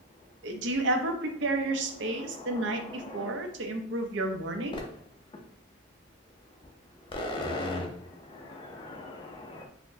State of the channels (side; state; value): both; normal; correlation 0.18